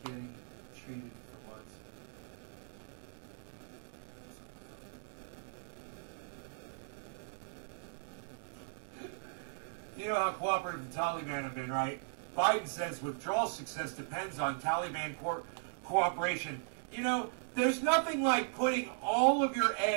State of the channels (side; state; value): left; silent; digital silence